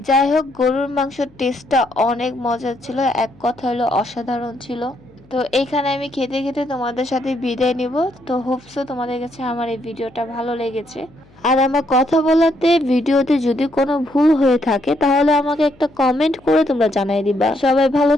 যাই হোক, গরুর মাংসের টেস্টটা অনেক মজার ছিল, এক কথা হলো অসাধারণ ছিল। তো এইখানে আমি খেতে খেতে তোমাদের সাথে বিদায় নিব। তো হোপসো তোমাদের কাছে আমার এই ভিডিওটা ভালো লেগেছে। আর আমার কথা বলাতে ভিডিওতে যদি কোনো ভুল হয়ে থাকে তাহলে আমাকে একটা কমেন্ট করে তোমরা জানাই দিবা। সবাই ভালো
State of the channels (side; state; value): left; noise; hum, 28 dB below the sound